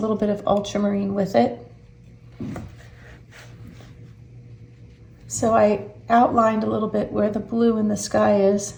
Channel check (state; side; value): identical; both; correlation 1.00